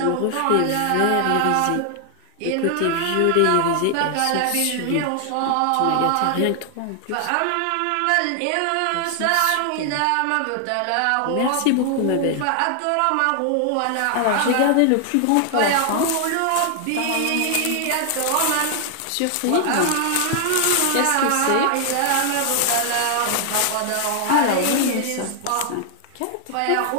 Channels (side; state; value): both; different; correlation 0.00